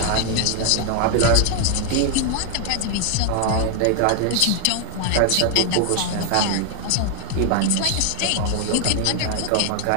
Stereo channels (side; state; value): both; different; correlation 0.00